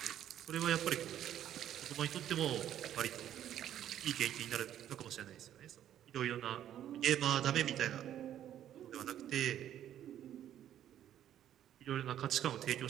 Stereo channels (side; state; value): left; quieter; 11.1 dB